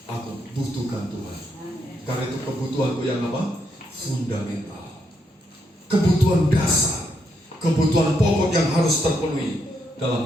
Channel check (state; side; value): normal; both; correlation 0.78